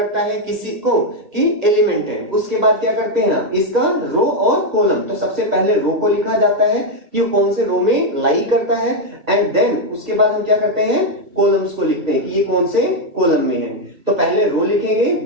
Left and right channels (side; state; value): left; late; 1.6 ms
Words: है किसी को कि एलिमेंट है। उसके बाद क्या करते हैं, इसका रो और कॉलम, तो सबसे पहले रो को लिखा जाता है कि वो कौन से रो में लाई करता है, एंड देन उसके बाद हम क्या करते हैं, कॉलम्स को लिखते हैं कि ये कौन से कॉलम में है। तो पहले रो लिखेंगे